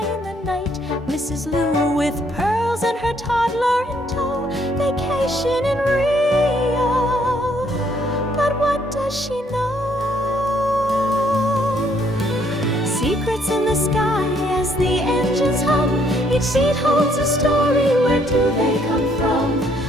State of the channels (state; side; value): normal; both; correlation 0.67